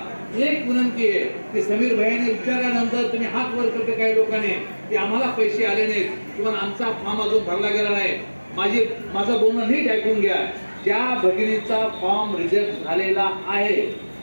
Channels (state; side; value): inverted; both; correlation -1.00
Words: एक विनंती आहे की समीर भाईने विचारल्यानंतर तुम्ही हात वर करते काही लोकांनी की आम्हाला पैसे आले नाहीत किंवा आमचा फॉर्म अजून भरला गेला नाही. माझं बोलणं नीट ऐकून घ्या. ज्या भगिनीचा फॉर्म रिजेक्ट झालेला आहे,